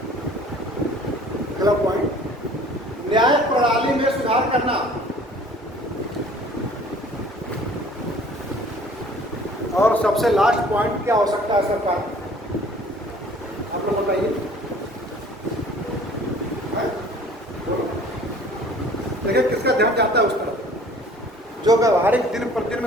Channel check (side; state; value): both; normal; correlation 0.51